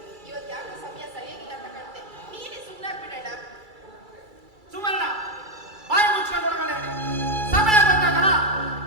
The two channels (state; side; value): late; left; 2.3 ms